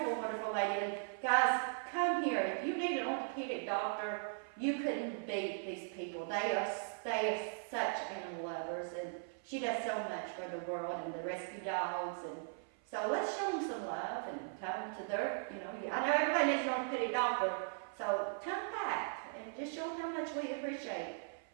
wonderful lady. And guys, come here. If you need an orthopedic doctor, you couldn't beat these people. They are such animal lovers, and she does so much for the world and the rescue dogs. And so let's show them some love and come to their, I know everybody needs an orthopedic doctor, so come back and just show them how much we appreciate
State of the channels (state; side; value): silent; left; 52 dB below the other